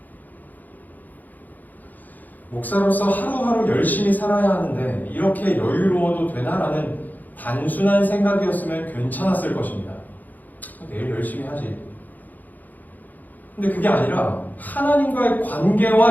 목사로서 하루하루 열심히 살아야 하는데 이렇게 여유로워도 되나? 라는 단순한 생각이었으면 괜찮았을 것입니다. 내일 열심히 하지. 근데 그게 아니라 하나님과의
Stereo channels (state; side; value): late; right; 0.083 ms